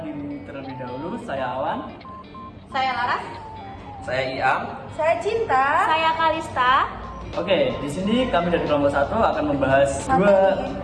diri terlebih dahulu. Saya Awan. Saya Laras. Saya Iam. Saya Cinta. Saya Kalista. Oke, di sini kami dari kelompok 1 akan membahas dua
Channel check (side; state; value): both; identical; correlation 1.00